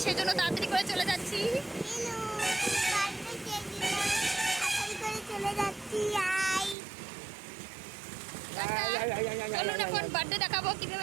সেজন্য তাড়াতাড়ি করে চলে যাচ্ছি। চলে যাচ্ছি। চলুন এখন বার্থডে দেখাবো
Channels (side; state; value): left; drops out; at 6.8 s